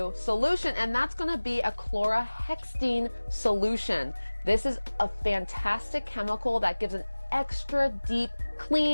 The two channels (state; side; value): inverted; both; correlation -1.00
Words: solution, and that's going to be a chlorhexidine solution. This is a fantastic chemical that gives an extra deep